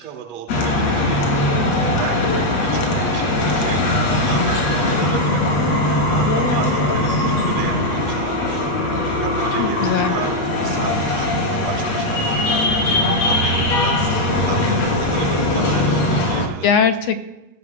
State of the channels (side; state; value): right; late; 8.4 ms